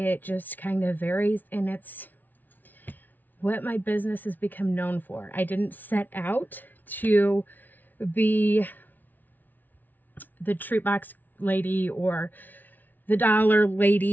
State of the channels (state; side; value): late; right; 0.083 ms